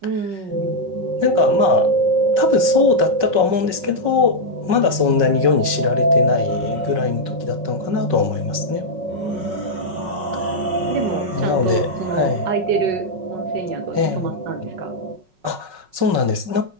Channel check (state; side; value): late; left; 5.4 ms